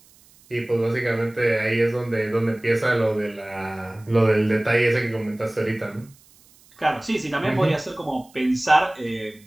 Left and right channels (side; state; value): right; noise; hiss, 28 dB below the sound